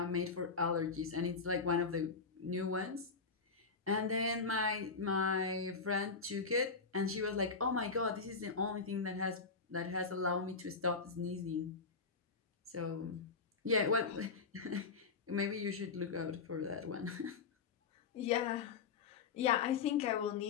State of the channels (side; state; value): right; quieter; 4.8 dB